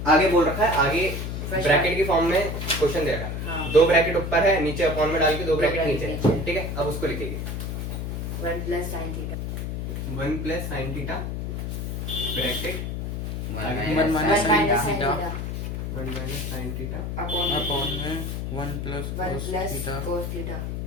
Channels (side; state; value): left; noise; hum, 4 dB below the sound